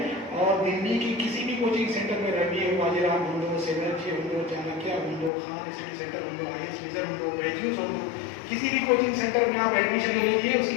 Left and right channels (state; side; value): drops out; right; at 5.3 s